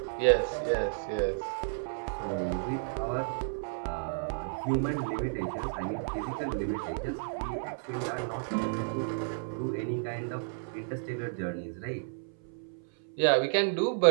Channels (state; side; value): silent; left; 57 dB below the other